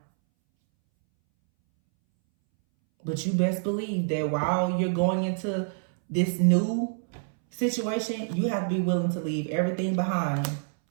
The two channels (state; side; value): silent; left; 60 dB below the other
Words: But you best believe that while you're going into this new situation, you have to be willing to leave everything behind